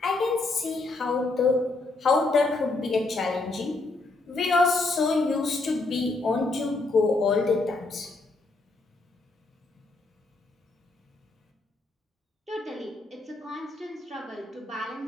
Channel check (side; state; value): right; quieter; 3.3 dB